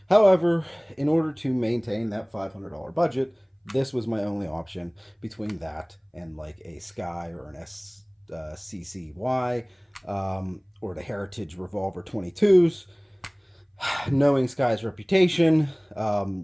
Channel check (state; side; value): identical; both; correlation 1.00